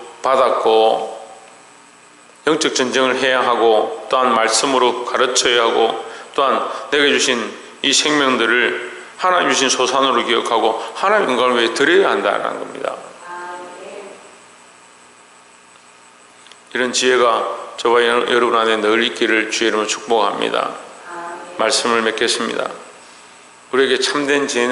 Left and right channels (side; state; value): both; identical; correlation 1.00